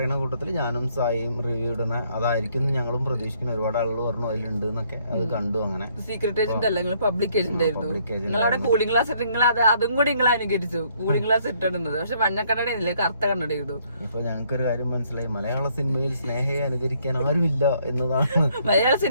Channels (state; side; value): inverted; both; correlation -0.67